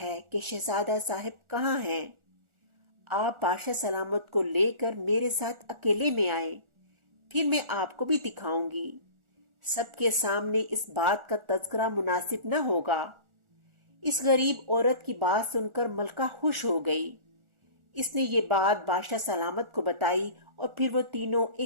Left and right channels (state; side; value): late; left; 1.4 ms